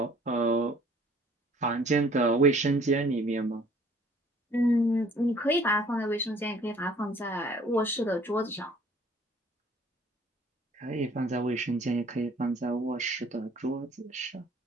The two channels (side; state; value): both; normal; correlation 0.56